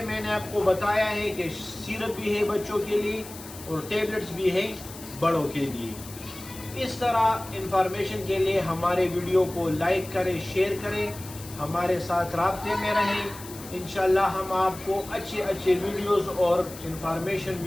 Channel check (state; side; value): noise; left; hiss, 15 dB below the sound